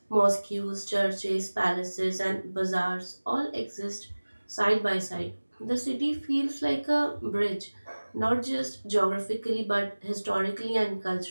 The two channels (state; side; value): inverted; both; correlation -1.00